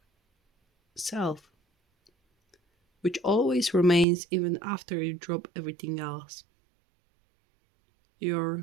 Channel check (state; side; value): drops out; left; at 4.0 s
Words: self, which always remains even after you drop everything else.